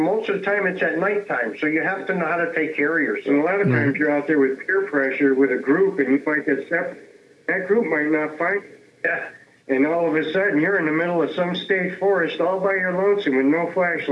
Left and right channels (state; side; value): identical; both; correlation 1.00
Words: of the time it's at nighttime, so you have to know how to take care of yourself. And a lot of times you're out there with peer pressure with a group, and you might get separate. That group might not find you. Yeah. And all of a sudden, you're in the middle of some state forest all by your lonesome with no